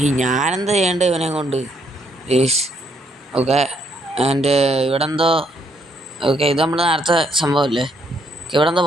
ഞാനെന്താ ചെയ്യേണ്ടത് ഇവനെ കൊണ്ട്? ഓക്കെ. ആൻഡ് ഇവിടെ എന്തോ. ഓക്കെ, ഇത് നമ്മൾ നേരത്തെ സംഭവമല്ലേ? ഇവിടെ എന്തോ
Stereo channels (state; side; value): normal; both; correlation 0.72